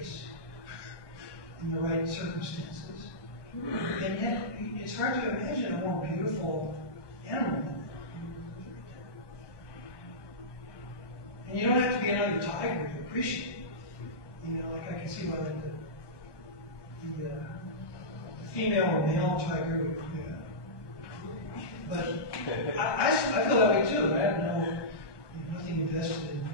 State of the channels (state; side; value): late; right; 1.2 ms